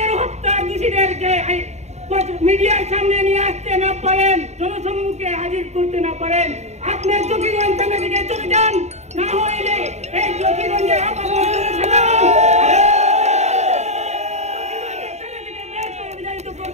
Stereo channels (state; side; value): late; left; 0.32 ms